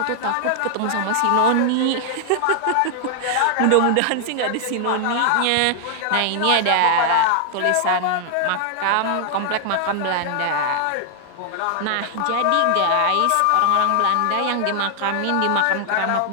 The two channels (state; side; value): different; both; correlation 0.00